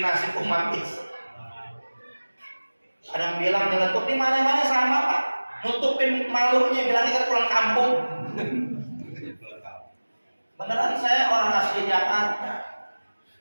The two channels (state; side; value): inverted; both; correlation -1.00